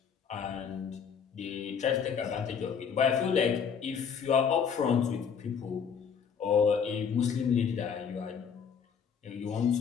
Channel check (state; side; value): quieter; right; 6.9 dB